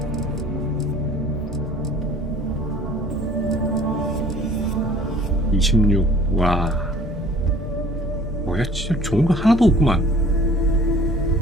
26. 와 뭐야 진짜 좋은 거 하나도 없구만.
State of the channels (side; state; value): both; normal; correlation 0.51